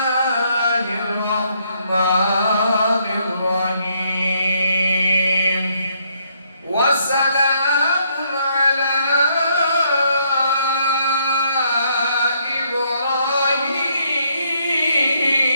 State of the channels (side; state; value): both; inverted; correlation -0.72